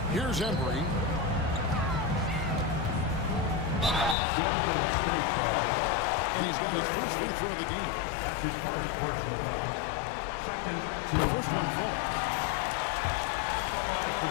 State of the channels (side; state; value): right; drops out; at 4.2 s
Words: Here's Embry. And he's got his first free throw of the game. That's his first personal foul. Second, The first one falls.